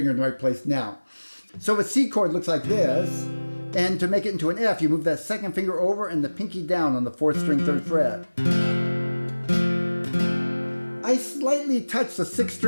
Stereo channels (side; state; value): both; inverted; correlation -1.00